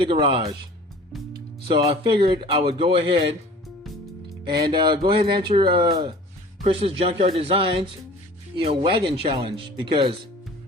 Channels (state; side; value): normal; both; correlation 0.45